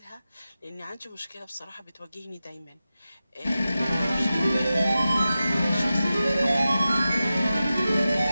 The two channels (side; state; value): both; inverted; correlation -0.93